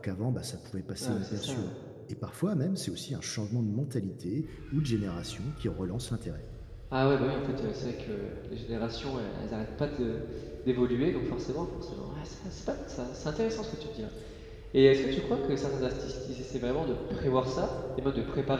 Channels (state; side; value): identical; both; correlation 1.00